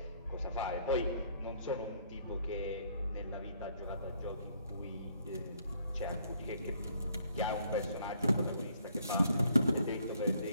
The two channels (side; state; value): both; inverted; correlation -0.66